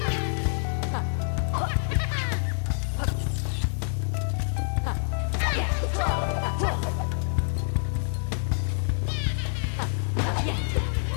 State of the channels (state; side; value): silent; right; digital silence